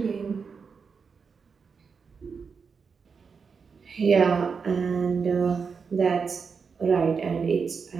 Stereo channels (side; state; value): left; quieter; 5.5 dB